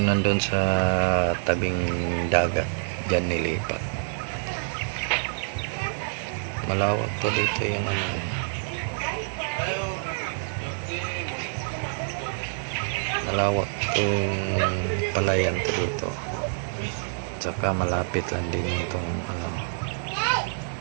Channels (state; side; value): silent; left; digital silence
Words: nandun sa tabing dagat, dyan nilipat. Malawak to dito yung malawak yung palayan to dito. Tsaka malapit lang din yung tong